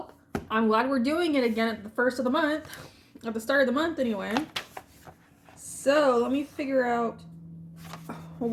I'm glad we're doing it again at the first of the month. At the start of the month, anyway. So let me figure out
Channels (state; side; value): identical; both; correlation 1.00